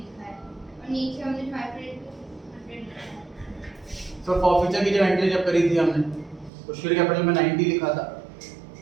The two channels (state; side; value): drops out; left; at 6.5 s